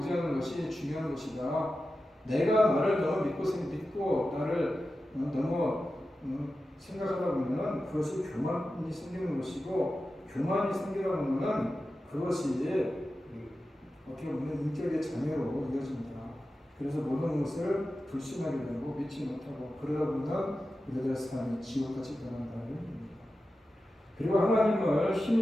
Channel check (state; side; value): normal; both; correlation 0.93